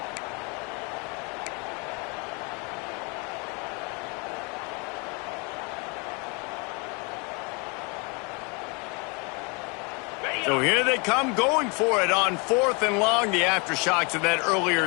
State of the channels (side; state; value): right; quieter; 31.7 dB